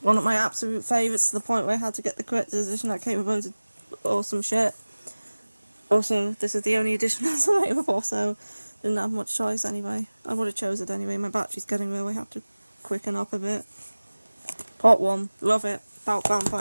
of my absolute favourites, to the point where I had to get the collector's edition that came with loads of awesome shit. Also, this is the only edition that's available, so didn't have much choice anyway. I would have chose it anyway. My battery's getting low, I have to quicken up a bit. Part 1, love it, about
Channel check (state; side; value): inverted; both; correlation -1.00